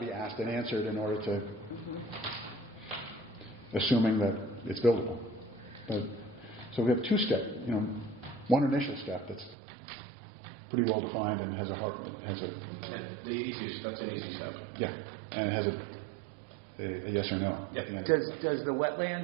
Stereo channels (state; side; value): drops out; left; at 9.6 s